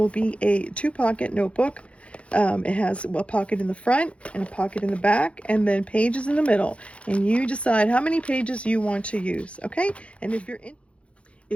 be a two-pocket notebook. It has a pocket in the front and a pocket in the back, and then pages in the middle, and you decide how many pages you want to use. Okay, and if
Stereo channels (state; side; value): late; right; 0.061 ms